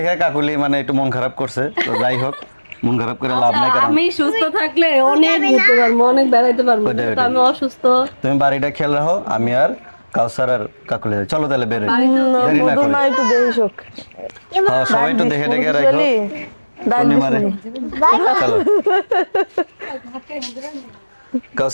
কাকুলি মানে একটু মন খারাপ করছে। তো যাই হোক, মন খারাপ করে লাভ নাই, কারণ আমি সুস্থ থাকলে অনেক ঘুরতে পারবো, অনেক বেড়াইতে পারবো, কিন্তু আমি অসুস্থ। তুমি বাড়িটা খেয়াল রাখো, আমি আর কাউসার আর কাকুলি চলো তাহলে বেরোই, দেরি না করি। একটু দেখে শোক হ্যাঁ, সবাই একটু দেখে দেখে রাখো পূর্ণিমারে। চলো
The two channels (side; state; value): both; inverted; correlation -1.00